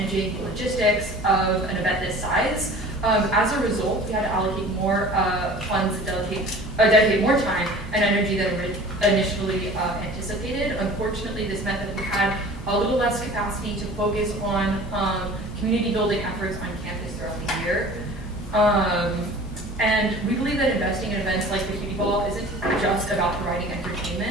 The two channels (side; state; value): both; normal; correlation 0.43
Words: the logistics of an event this size. As a result, we had to allocate more funds and dedicate more time and energy than initially anticipated. Unfortunately, this meant that we had a little less capacity to focus on community building efforts on campus throughout the year. And we believe that investing in events like the Cutie Ball isn't just about providing